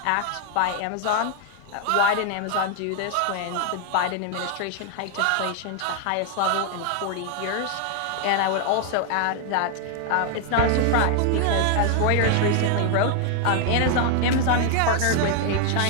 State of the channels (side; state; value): both; different; correlation 0.00